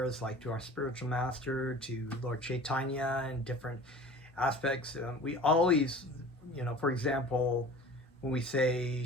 like to our spiritual master, to Lord Chaitanya, and different aspects, we always, for example, when we say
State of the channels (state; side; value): normal; both; correlation 0.43